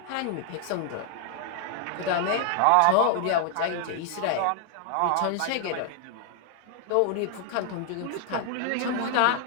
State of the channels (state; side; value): different; both; correlation 0.00